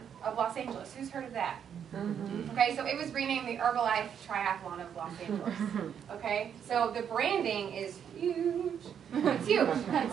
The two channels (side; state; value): left; quieter; 8.3 dB